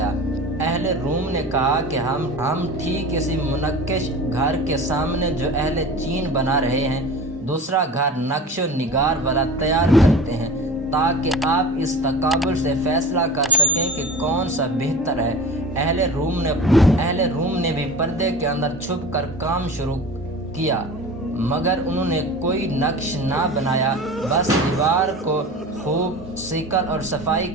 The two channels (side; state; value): both; normal; correlation 0.35